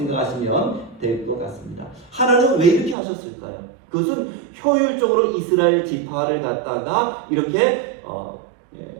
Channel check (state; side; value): drops out; left; at 3.0 s